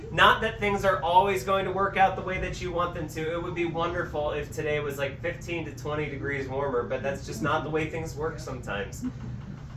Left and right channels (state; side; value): identical; both; correlation 1.00